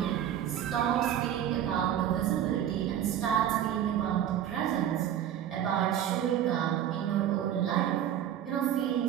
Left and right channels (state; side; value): quieter; left; 10.5 dB